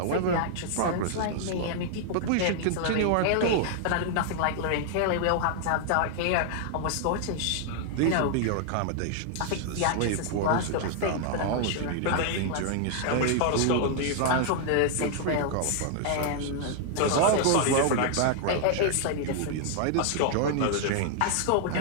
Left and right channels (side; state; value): both; different; correlation -0.01